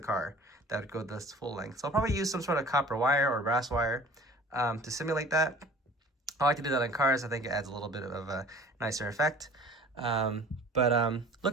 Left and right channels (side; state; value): both; normal; correlation 0.46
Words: car that would go this full length. So I'll probably use some sort of copper wire or brass wire to simulate that. I like to do that in cars. I think it adds a little bit of a nicer effect. But